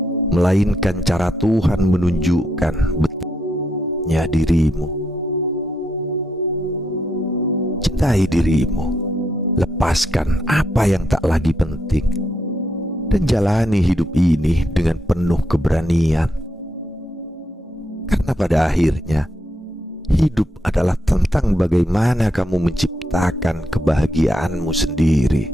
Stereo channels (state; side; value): normal; both; correlation 0.79